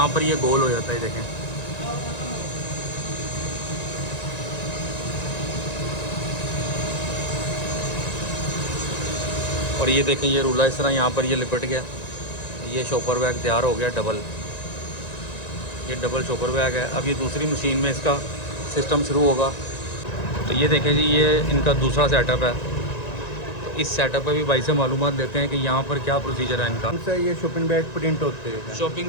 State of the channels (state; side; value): late; right; 1.9 ms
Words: पर ये गोल हो जाता है। देखें और ये देखें, ये रूला इस तरह यहाँ पर ये लिपट गया। ये शॉपर बैग तैयार हो गया डबल। ये डबल शॉपर बैग है। अब ये दूसरी मशीन में इसका सिस्टम शुरू होगा। तो ये देखें जी, ये इनका दूसरा सेटअप है। तो इस सेटअप पे भी भाई से मालूमात लेते हैं कि यहाँ पर क्या प्रोसीजर है इनका। उनसे ये शॉपिंग बैग प्रिंट होते हैं।